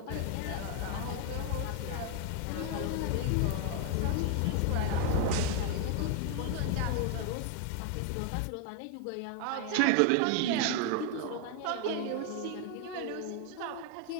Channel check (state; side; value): different; both; correlation 0.01